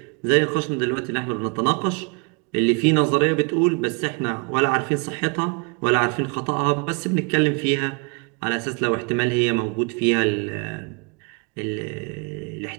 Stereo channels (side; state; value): left; quieter; 31.7 dB